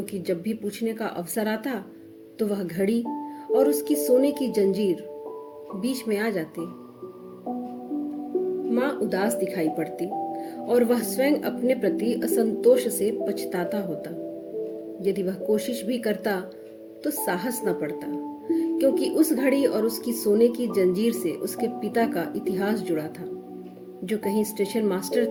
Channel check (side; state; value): both; identical; correlation 1.00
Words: जब भी पूछने का अवसर आता तो वह घड़ी और उसकी सोने की जंजीर बीच में आ जाती। माँ उदास दिखाई पड़ती और वह स्वयं अपने प्रति असंतोष से पछताता होता। यदि वह कोशिश भी करता तो साहस न पड़ता, क्योंकि उस घड़ी और उसकी सोने की जंजीर से उसके पिता का इतिहास जुड़ा था, जो कहीं स्टेशन मास्टर